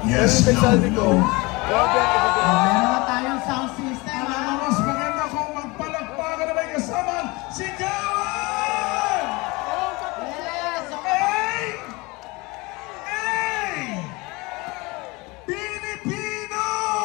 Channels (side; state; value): right; quieter; 24.5 dB